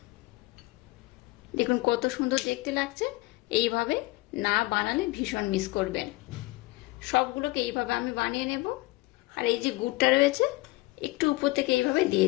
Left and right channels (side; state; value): right; quieter; 21.3 dB